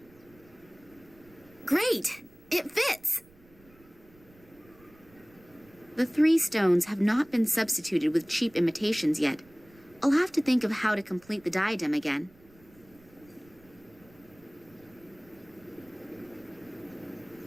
Great! It fits! The 3 stones have not been substituted with cheap imitations yet. I'll have to think of how to complete the diadem again.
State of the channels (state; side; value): noise; right; rumble, 27 dB below the sound